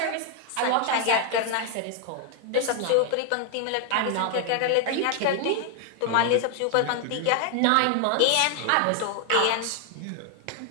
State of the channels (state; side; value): different; both; correlation 0.00